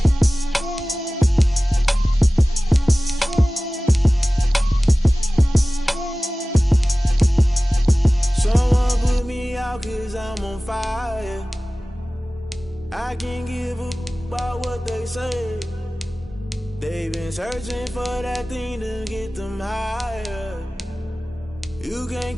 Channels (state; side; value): normal; both; correlation 0.97